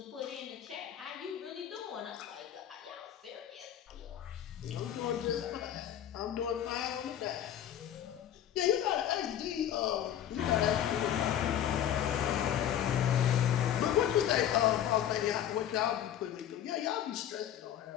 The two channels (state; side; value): quieter; right; 10.5 dB